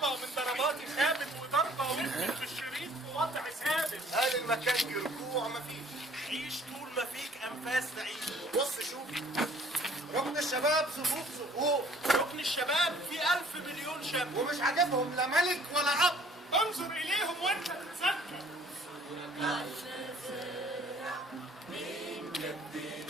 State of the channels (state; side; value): normal; both; correlation 0.56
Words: من ضرباتي خابت وضربه وقفت في الشريط في وضع ثابت. هل المكان في رجوع مفيش؟ عيش طول ما فيك انفاس تعيش. بص شوف ركن الشباب صفوف صفوف. ركن الشباب في 1000 مليون شاب ومش عاجبهم لا ملك ولا اب. انظر اليهم وانت تتذكر.